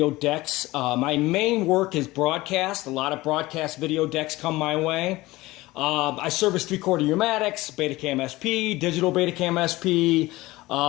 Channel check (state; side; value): quieter; right; 19.4 dB